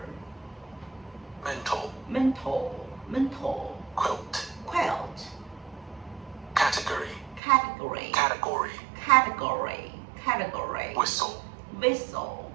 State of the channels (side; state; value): left; drops out; at 7.4 s